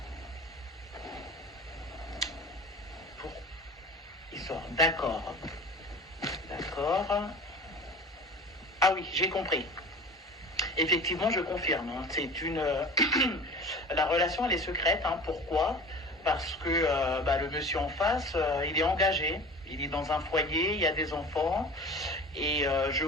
Pour... Il sort, d'accord. D'accord. Ah oui, j'ai compris. Effectivement, je confirme. Hein. C'est une la relation elle est secrète. Hein. Pourquoi? Parce que le monsieur en face, il est engagé. Il est dans un foyer, il y a des enfants. Et je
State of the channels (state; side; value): normal; both; correlation 0.38